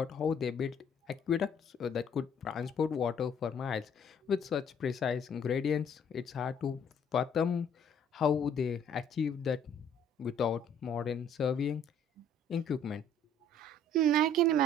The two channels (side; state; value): both; normal; correlation 0.59